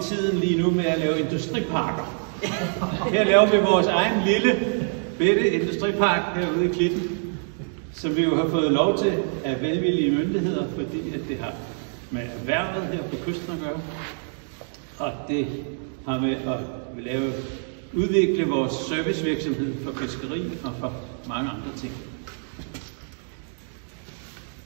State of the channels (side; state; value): left; silent; 56 dB below the other